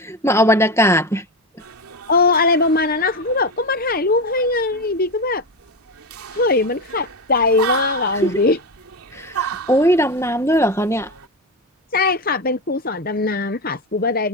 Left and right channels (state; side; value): normal; both; correlation 0.16